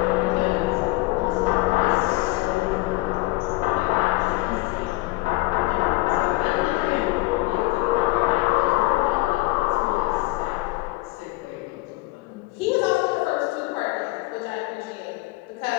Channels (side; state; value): right; quieter; 21.4 dB